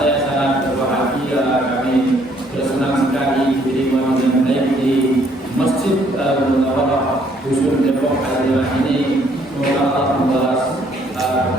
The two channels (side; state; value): both; normal; correlation 0.65